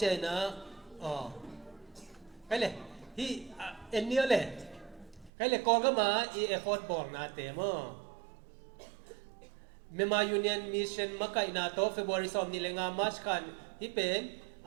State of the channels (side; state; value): left; drops out; at 5.3 s